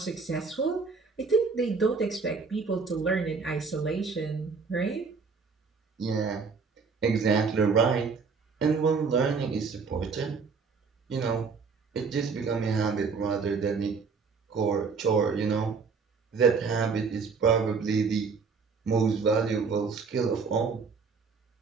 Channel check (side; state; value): left; quieter; 5.0 dB